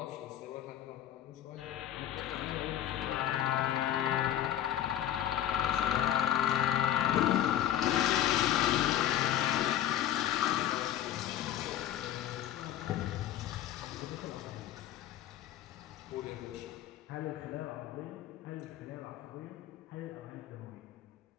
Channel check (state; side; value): quieter; right; 11.3 dB